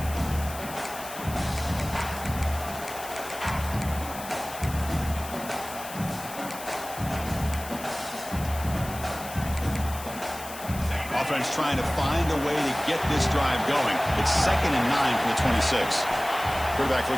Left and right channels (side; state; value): left; noise; hiss, 13 dB below the sound